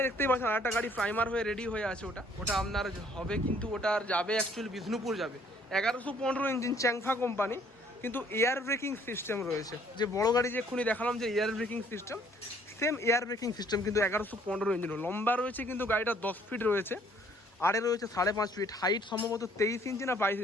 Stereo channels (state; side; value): normal; both; correlation 0.62